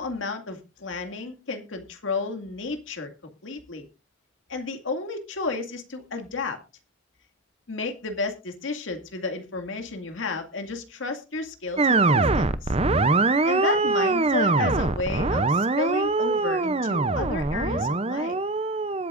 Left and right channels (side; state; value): both; normal; correlation 0.20